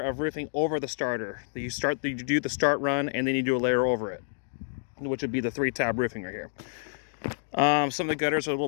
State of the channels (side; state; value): right; silent; digital silence